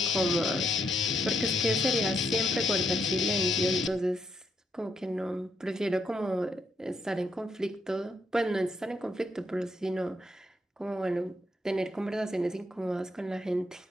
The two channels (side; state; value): both; normal; correlation 0.77